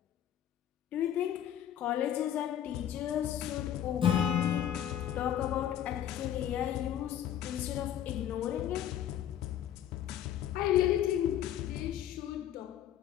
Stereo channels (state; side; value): quieter; right; 10.6 dB